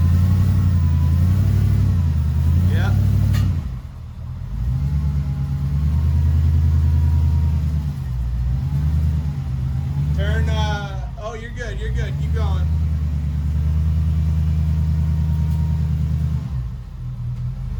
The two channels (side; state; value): both; identical; correlation 1.00